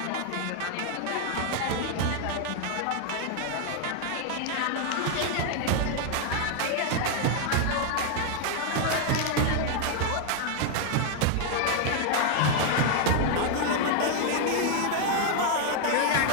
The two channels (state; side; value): different; both; correlation 0.00